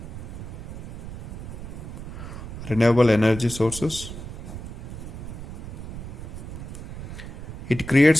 renewable energy sources. It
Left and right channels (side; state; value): right; noise; rumble, 9 dB below the sound